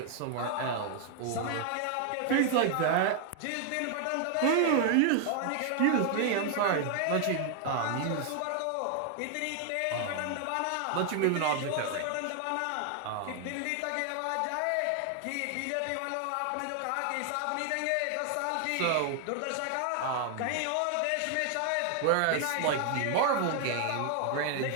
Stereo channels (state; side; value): different; both; correlation 0.00